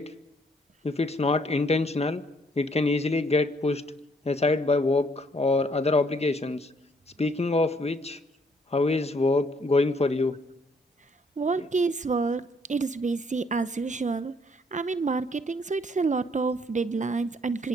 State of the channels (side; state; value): both; normal; correlation 0.66